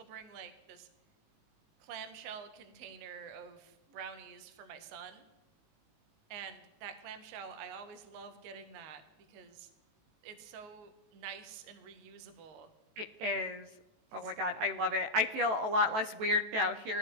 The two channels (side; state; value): left; late; 18 ms